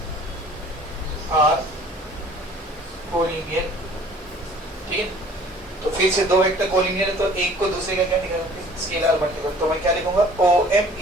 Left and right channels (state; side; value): normal; both; correlation 0.51